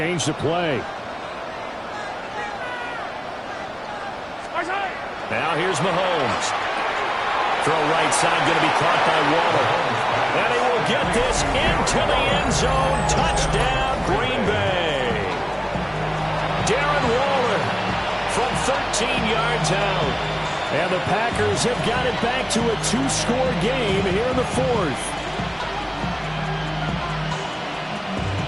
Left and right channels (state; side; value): identical; both; correlation 1.00